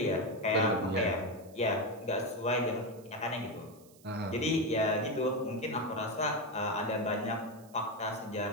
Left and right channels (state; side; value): noise; right; hiss, 26 dB below the sound